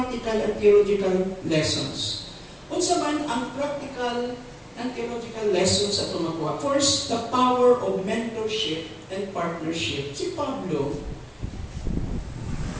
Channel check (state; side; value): identical; both; correlation 1.00